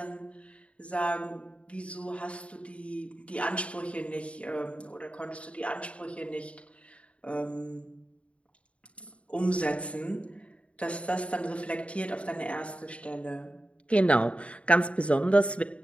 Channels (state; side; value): late; right; 0.062 ms